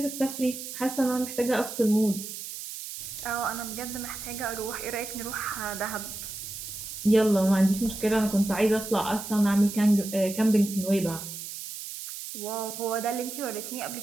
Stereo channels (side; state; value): right; noise; hiss, 9 dB below the sound